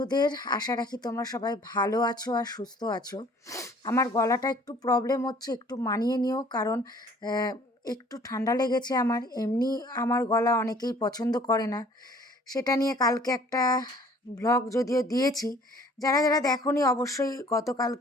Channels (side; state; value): both; normal; correlation 0.54